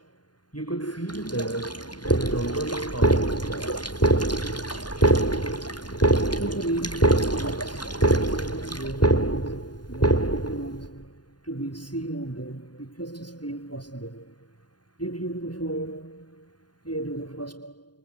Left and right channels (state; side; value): late; right; 0.70 ms